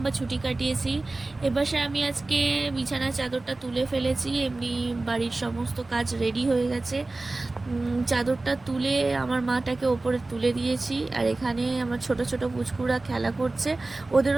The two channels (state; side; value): quieter; left; 3.1 dB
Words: ছুটি কাটিয়েছি। এবারে আমি আজকে বিছানা চাদরটা তুলে ফেলেছি, এমনি বাড়ির সমস্ত কাজ রেডি হয়ে গেছে। চাদরটা তুলে আমার মাটাকে ওপরে তুলে দিয়েছি, আর এখানে আমার ছোট ছোট পুচকুরা খেলা করছে,